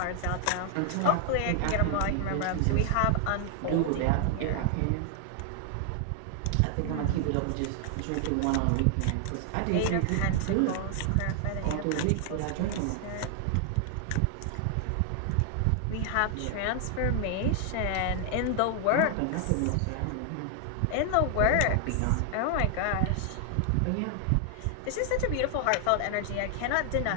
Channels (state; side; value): different; both; correlation 0.00